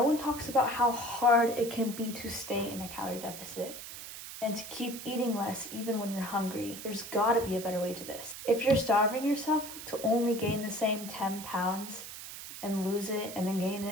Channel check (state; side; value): noise; right; hiss, 11 dB below the sound